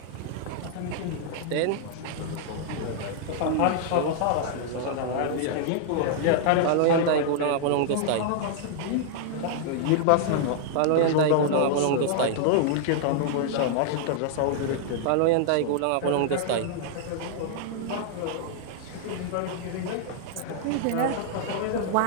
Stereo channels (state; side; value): different; both; correlation -0.01